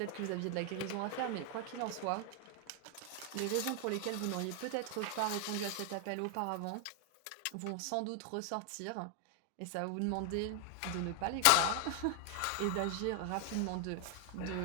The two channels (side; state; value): both; different; correlation 0.00